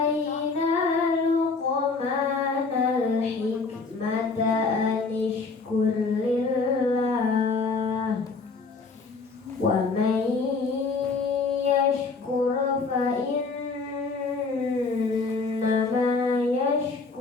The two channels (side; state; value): right; quieter; 4.3 dB